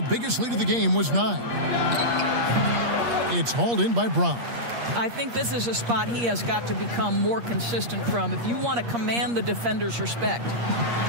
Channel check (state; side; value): late; left; 8.5 ms